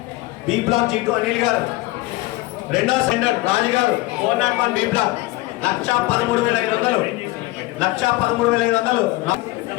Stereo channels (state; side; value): quieter; right; 20.0 dB